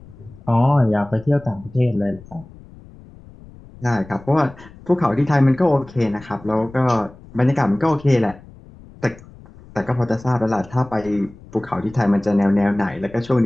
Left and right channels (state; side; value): noise; left; rumble, 21 dB below the sound